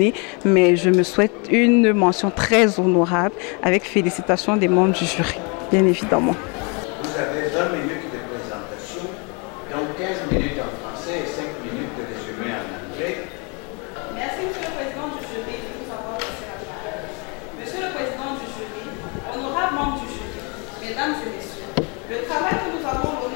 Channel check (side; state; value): right; quieter; 32.7 dB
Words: mais je me souhaite une mention très honorable avec félicitations des membres du jury, bien évidemment. Vous avez 20 minutes de présentation, donc 15 minutes en français et 5 minutes de résumé en anglais. Merci, Monsieur le Président du jury, de nous avoir laissé la parole. Monsieur le Président du jury, honorables membres du jury, mesdames et messieurs, le travail que nous avons